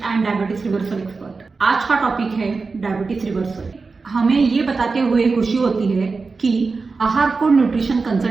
and diabetes reversal expert. आज का टॉपिक है डायबिटीज रिवर्सल। हमें ये बताते हुए खुशी होती है कि आहार कोड न्यूट्रिशन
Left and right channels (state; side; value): quieter; left; 4.3 dB